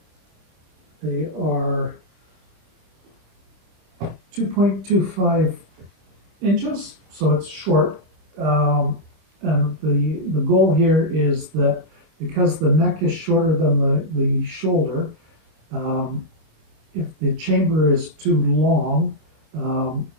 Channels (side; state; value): left; late; 26 ms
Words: They are 2.25 inches, so it's short. And the goal here is that because the neck is shorter than the shoulder, if the chamber is too long,